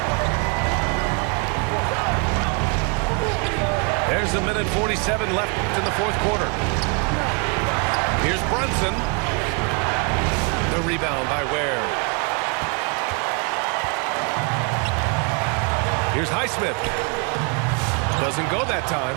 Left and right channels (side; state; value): left; quieter; 34.6 dB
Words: There's a minute 47 left in the fourth quarter. Here's Brunson. The rebound by Ware. Here's Highsmith. Doesn't go that time.